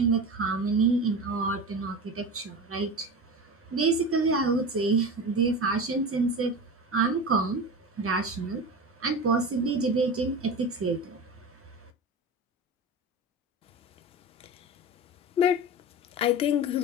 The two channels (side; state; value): both; normal; correlation 0.28